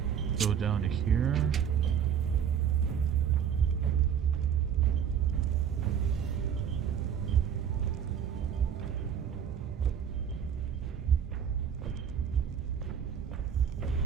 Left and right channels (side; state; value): left; quieter; 8.3 dB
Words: Go down to here.